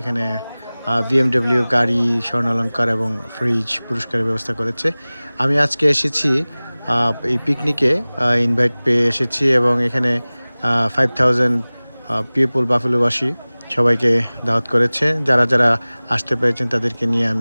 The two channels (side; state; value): both; inverted; correlation -0.99